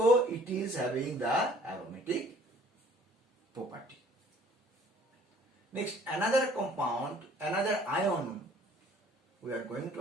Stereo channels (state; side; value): normal; both; correlation 0.56